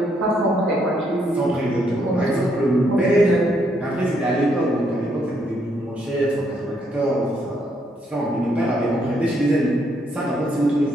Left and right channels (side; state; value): both; normal; correlation 0.74